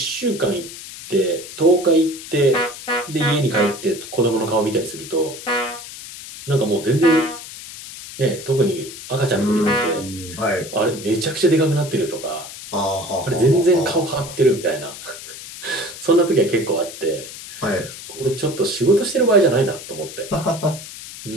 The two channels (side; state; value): left; noise; hiss, 13 dB below the sound